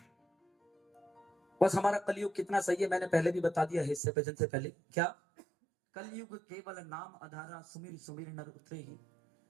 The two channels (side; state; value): left; drops out; at 4.0 s